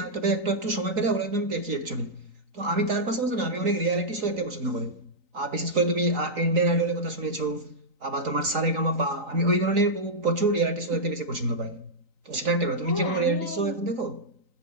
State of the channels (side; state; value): left; late; 3.9 ms